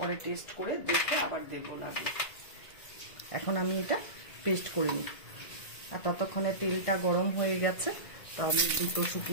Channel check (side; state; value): right; late; 1.5 ms